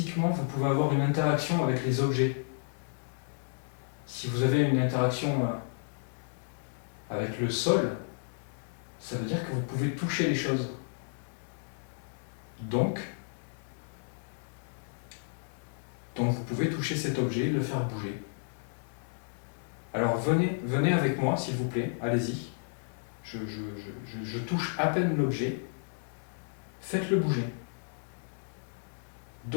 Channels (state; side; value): silent; right; digital silence